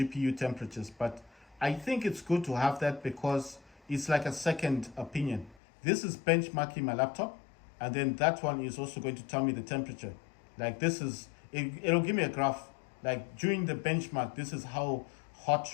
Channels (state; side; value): drops out; right; at 5.6 s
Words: temperatures, but I think it's good to have that because it's like a second opinion. This is benchmarking my laptop, and then that one is also going to tell me the temperature. Like it'll give me a graph. Like during the benchmark, this is how hot